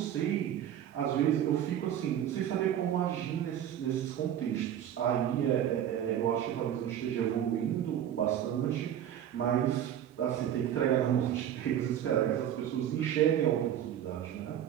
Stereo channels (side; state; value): left; quieter; 10.4 dB